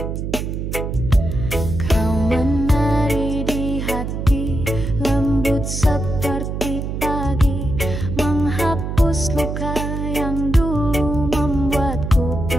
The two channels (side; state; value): right; noise; hum, 4 dB below the sound